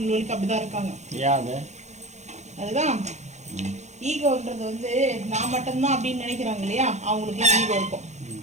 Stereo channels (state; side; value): late; left; 0.33 ms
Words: அப்படிதான் இருக்காங்க. அதுதான் ஈகோன்றது வந்து நான் மட்டும்தான் அப்படின்னு நினைக்கிறாங்க இல்லையா, அவங்களுக்கு ஈகோ இருக்கும்.